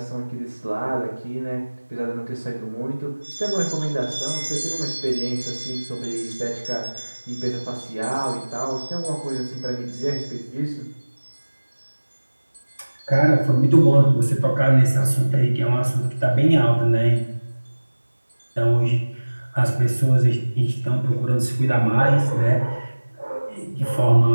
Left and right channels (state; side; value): inverted; both; correlation -1.00